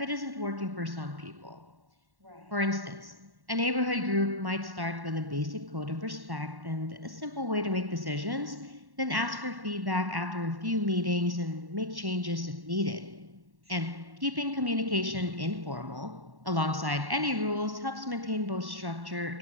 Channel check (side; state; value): left; late; 1.1 ms